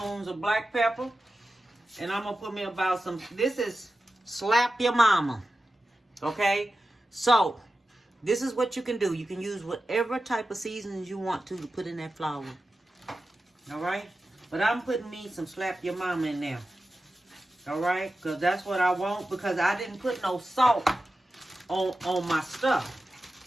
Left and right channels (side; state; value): both; normal; correlation 0.93